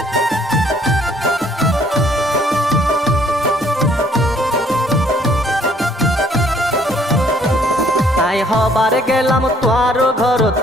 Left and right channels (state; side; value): normal; both; correlation 0.62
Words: হবার গেলাম তোয়ার ঘরত,